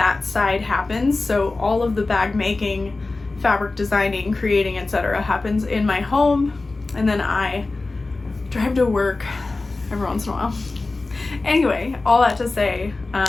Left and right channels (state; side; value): quieter; right; 3.4 dB